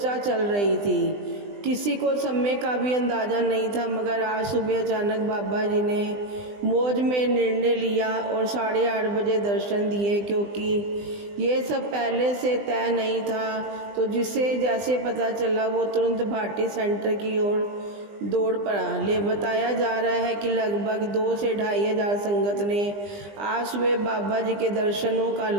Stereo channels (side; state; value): left; late; 20 ms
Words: चल रही थी। किसी को समय का भी अंदाज़ा नहीं था, मगर आज सुबह अचानक बाबा जी ने मौज में निर्णय लिया और 8:30 बजे दर्शन दिए। क्योंकि ये सब पहले से तय नहीं था, तो जिसे जैसे पता चला वो तुरंत भाटी सेंटर की ओर दौड़ पड़ा। बताया जा रहा है कि लगभग 2 से 2,500 संगत ने आज सुबह बाबा जी के दर्शनों का